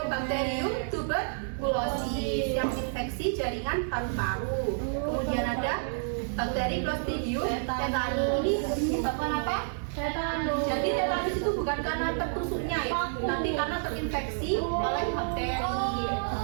tuberculosis yang infeksi jaringan paru-paru. Kemudian ada bakteri Clostridium tetani. Ini menyebabkan apa? Tetanus. Jadi tetanus itu bukan karena tertusuknya ya, tapi karena terinfeksi oleh bakteri.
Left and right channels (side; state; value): left; silent; 58 dB below the other